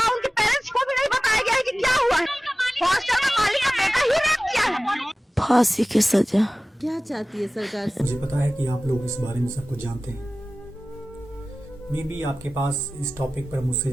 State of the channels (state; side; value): normal; both; correlation 0.97